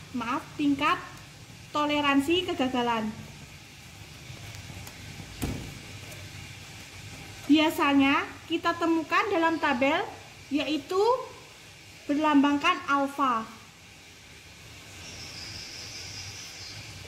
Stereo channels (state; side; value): identical; both; correlation 1.00